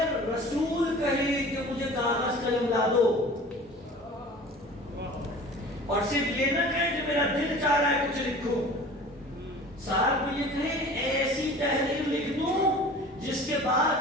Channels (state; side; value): normal; both; correlation 0.42